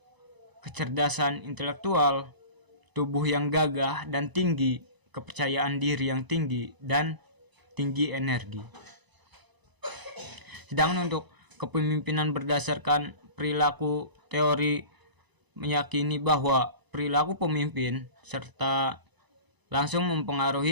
kecerdasan intelektual, tubuh yang gagah dan tinggi, kepercayaan diri yang tinggi, dan tinggi energi. Sedangkan untuk kepemimpinan berdasarkan perilaku, teori meyakini bahwa perilaku pemimpin serta langsung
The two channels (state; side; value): late; left; 1.0 ms